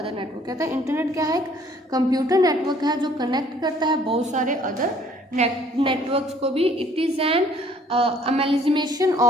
network. कहता है इंटरनेट क्या है, एक कंप्यूटर नेटवर्क है जो कनेक्ट करता है बहुत सारे अदर नेटवर्क्स को भी। It is an amalgamation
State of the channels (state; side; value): normal; both; correlation 0.58